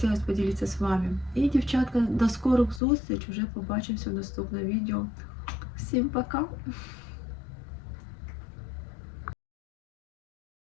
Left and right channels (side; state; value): right; drops out; at 2.8 s